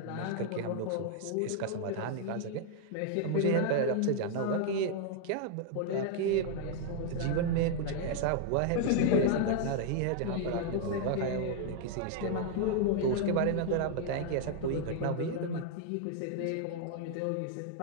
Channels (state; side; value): different; both; correlation 0.00